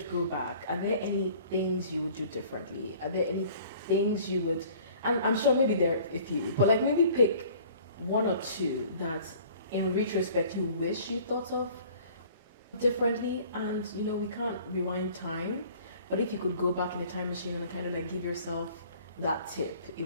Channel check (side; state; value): both; inverted; correlation -0.51